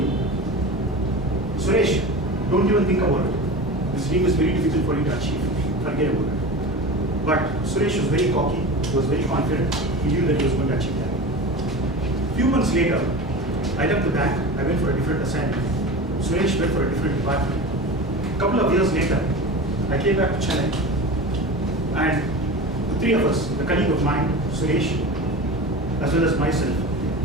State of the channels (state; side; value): normal; both; correlation 0.31